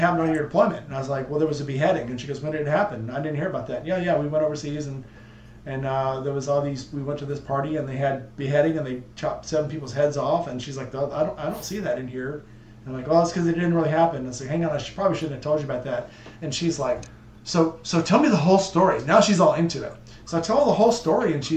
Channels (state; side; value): identical; both; correlation 1.00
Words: on your deployment. And I was like, well, there was a beheading. And she goes, when did it happen? I didn't hear about that. Yeah, we went overseas, and there was all these. We went to this party, and they had beheading, and they chopped 7 people's heads off. And she's like, I don't see that in here. And I'm like, well, it's because it didn't really happen. And I said, hang on, probably shouldn't have told you about that. And she's like, so tell me the whole story. Now she's all into it. So I tell her the whole story, and